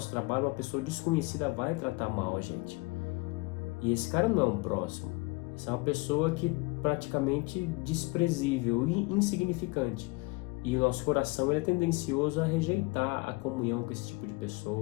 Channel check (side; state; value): right; quieter; 25.5 dB